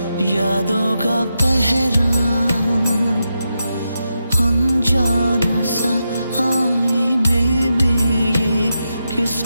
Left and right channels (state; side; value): inverted; both; correlation -0.87